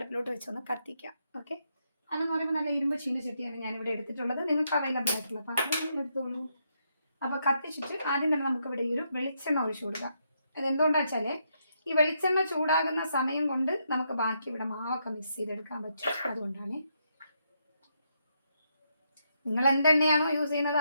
വെച്ചൊന്ന് കത്തിക്കാം. ഓക്കെ, അതെന്ന് പറയുമ്പോൾ നല്ല ഇരുമ്പ് ചീനച്ചട്ടിയാണ് ഞാനിവിടെ എടുത്തിട്ടുള്ളത്. നിങ്ങൾക്ക് അവൈലബിൾ ആയിട്ടുള്ള പാത്രം എടുത്തോളൂ. അപ്പോൾ കത്തിച്ചിട്ട് ആദ്യം തന്നെ നമുക്കിവിടെ ഈ ഒരു വെളിച്ചെണ്ണ ഒഴിച്ചു കൊടുക്കാം. അതെന്തുകൊണ്ടാണെന്ന് വെച്ചാൽ ഈ വെളിച്ചെണ്ണ ചൂടാകുന്ന സമയം കൊണ്ട് നമുക്ക് ബാക്കി ഇവിടെ മാവൊക്കെ മിക്സ് ചെയ്തെടുക്കാൻ പറ്റും. അതുകൊണ്ടാണ്. നിങ്ങൾ എന്തെണ്ണയാണോ യൂസ് ചെയ്യുന്നത്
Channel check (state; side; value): inverted; both; correlation -0.78